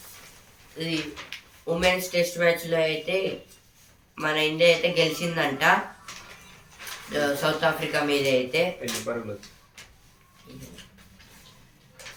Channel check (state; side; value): identical; both; correlation 1.00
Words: ఇది women's test మ్యాచ్లో అయితే మన ఇండియా అయితే గెలిచిందంట సౌత్ ఆఫ్రికా మీద అయితే.